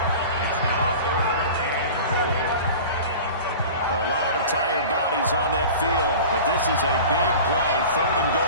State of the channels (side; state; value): both; inverted; correlation -0.37